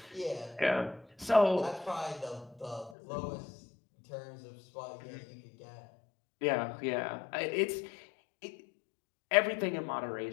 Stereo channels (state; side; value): drops out; right; at 3.0 s